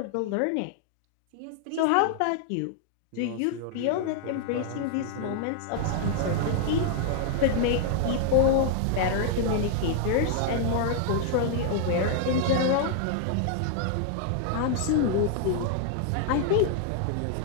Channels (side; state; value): both; different; correlation 0.00